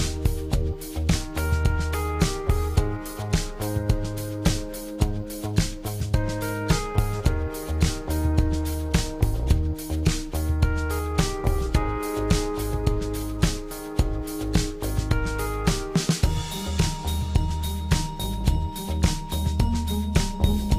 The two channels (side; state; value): both; identical; correlation 1.00